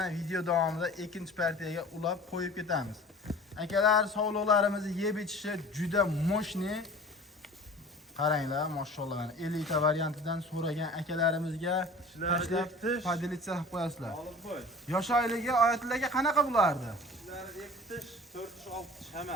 video davomida ikkinchi partiyaga ulab qo'yib ketamiz. Akalar sog'liqlarimizni yeb ichishi juda moshni. Qaranglar, mashallah. 50 ta variantidan so'ragan akalarimizga tashlab padilitsiya qilib qo'yasizlar. Yosh oyligi Oyatlarga qanaqa bo'lardi? 2 tish, 4 tish, 6 tish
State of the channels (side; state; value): both; normal; correlation 0.43